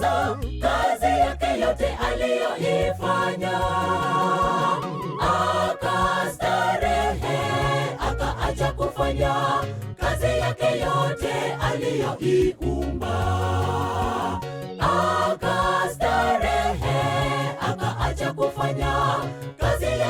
kazi yake yote aliyoifanya. Akastarehe, akaacha kufanya kazi yake yote aliyoiumba. Akastarehe, akaacha kufanya kazi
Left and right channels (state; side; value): identical; both; correlation 1.00